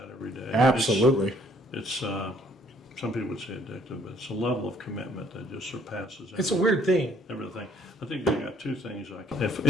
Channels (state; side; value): normal; both; correlation 0.62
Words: every day. Absolutely. It's some people would say addictive, but it's a level of commitment that just surpasses It's a weird thing. everything. I think I got 2 things I can. If